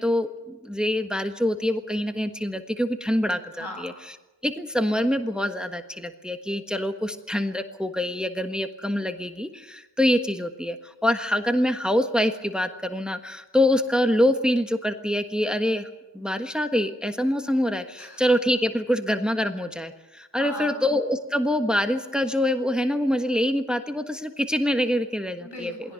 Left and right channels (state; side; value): normal; both; correlation 0.83